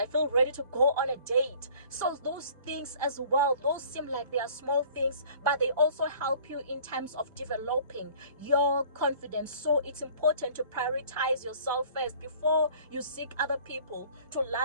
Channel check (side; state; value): both; inverted; correlation -0.51